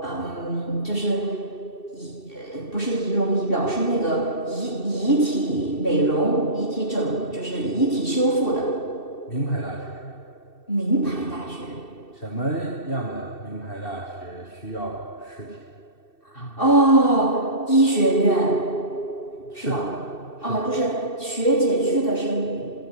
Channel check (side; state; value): right; late; 2.7 ms